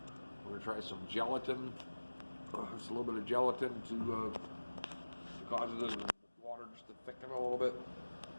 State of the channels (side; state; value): both; inverted; correlation -1.00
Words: We're going to try some gelatin, just a little bit of gelatin to cause the water just to thicken a little bit.